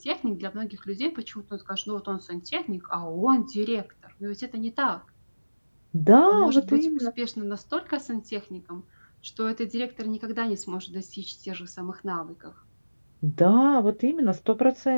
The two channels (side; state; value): both; inverted; correlation -1.00